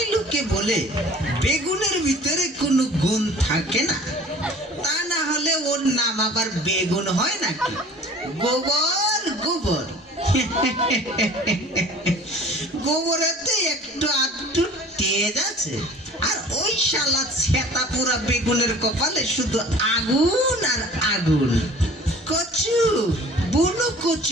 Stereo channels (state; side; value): normal; both; correlation 0.47